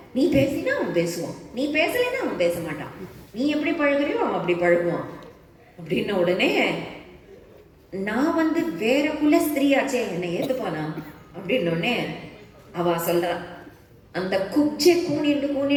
நீ பேசினா அவன் பேசுவான், நீ பேசலைன்னா அவன் பேச மாட்டான். நீ எப்படி பழகுறியோ அவன் அப்படி பழகுவான். அப்படின்ன உடனே நான் வேற குல ஸ்திரீயாச்சே, என்னை ஏத்துப்பானா அப்படின்னோடனே அவ சொல்றா, அந்த குப்ஜை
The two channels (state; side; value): identical; both; correlation 1.00